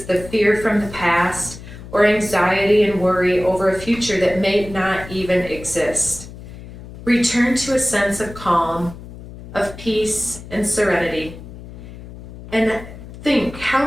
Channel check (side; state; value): left; noise; hum, 15 dB below the sound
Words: the fear from the past or anxiety and worry over a future that may not even exist? Return to a sense of calm, of peace and serenity, and think